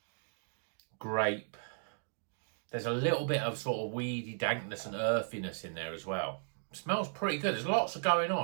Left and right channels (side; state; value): left; silent; digital silence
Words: grape. There's a little bit of sort of weedy dankness and earthiness in there as well. It smells pretty good. There's lots of going